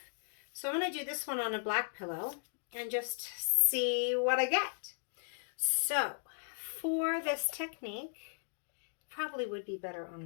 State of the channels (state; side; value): silent; right; digital silence